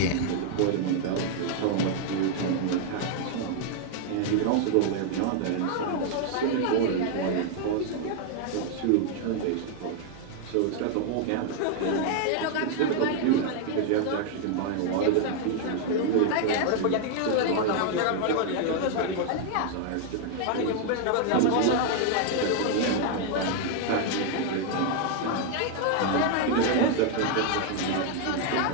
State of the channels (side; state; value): both; different; correlation 0.00